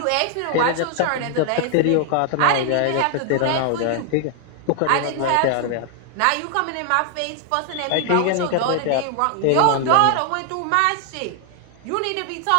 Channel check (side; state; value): both; different; correlation 0.00